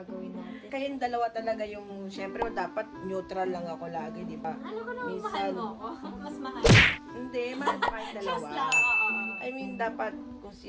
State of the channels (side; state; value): both; identical; correlation 1.00